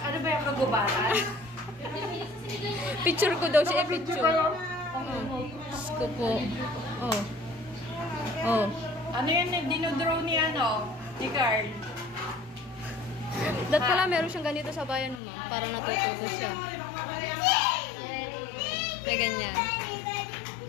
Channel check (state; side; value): drops out; right; at 15.2 s